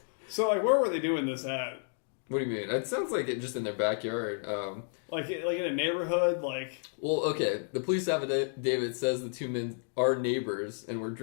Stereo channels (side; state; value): right; silent; digital silence